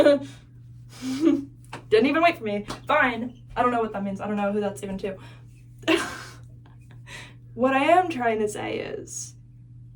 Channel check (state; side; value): identical; both; correlation 1.00